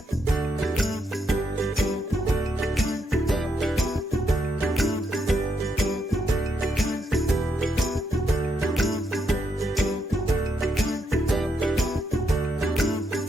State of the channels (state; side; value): normal; both; correlation 0.79